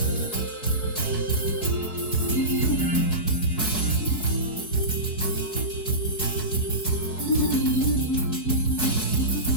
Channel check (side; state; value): right; late; 4.7 ms